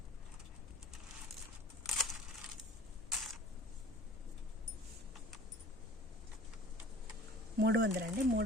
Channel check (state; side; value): normal; both; correlation 0.45